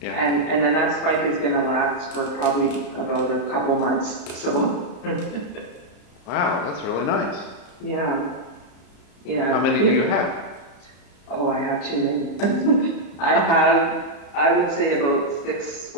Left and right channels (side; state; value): right; late; 34 ms